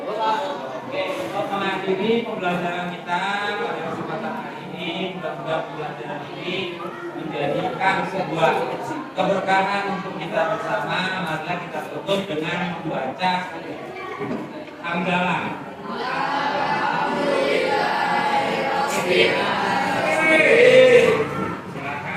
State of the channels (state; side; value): identical; both; correlation 1.00